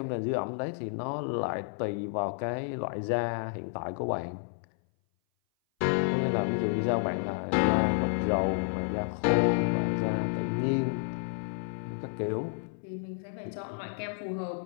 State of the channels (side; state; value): right; silent; 57 dB below the other